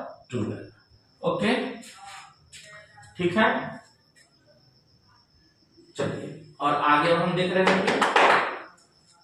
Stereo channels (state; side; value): identical; both; correlation 1.00